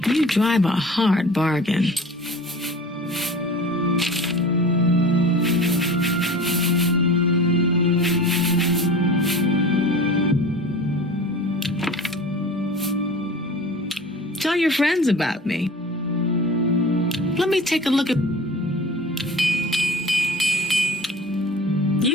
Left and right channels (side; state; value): both; normal; correlation 0.39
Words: You drive a hard bargain. Tell your friends about me. Let me take a look at...